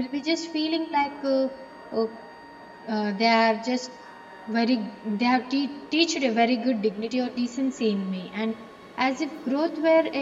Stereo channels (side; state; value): both; identical; correlation 1.00